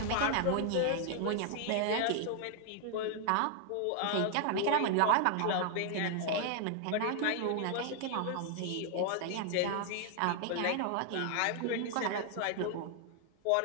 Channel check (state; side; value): different; both; correlation 0.00